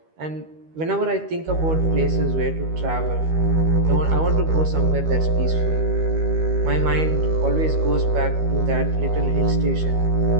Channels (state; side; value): late; left; 13 ms